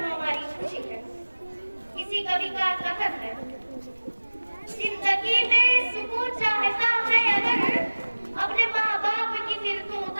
खुशी है। किसी कवि का कथन है, जिंदगी में सुकून चाहता है अगर, अपने माँ बाप की फिर तू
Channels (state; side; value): inverted; both; correlation -1.00